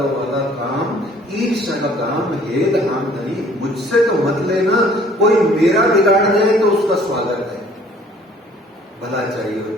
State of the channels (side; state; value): both; normal; correlation 0.56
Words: वाला काम, ईर्ष्या का काम, हेद हाम नहीं, मुझसे तो मत लेना। कोई मेरा बिगाड़ जाए तो उसका स्वागत है, भला चाहिए